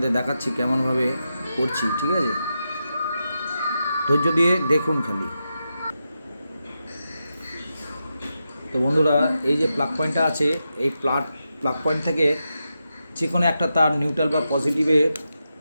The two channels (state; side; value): inverted; both; correlation -0.88